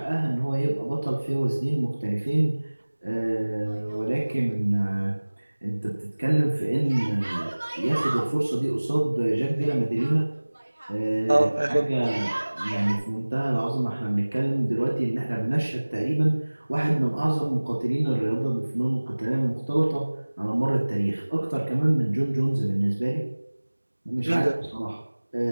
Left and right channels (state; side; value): inverted; both; correlation -1.00